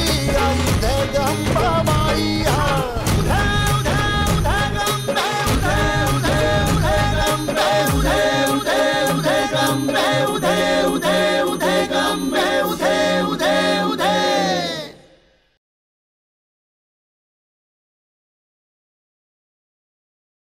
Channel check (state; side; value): identical; both; correlation 1.00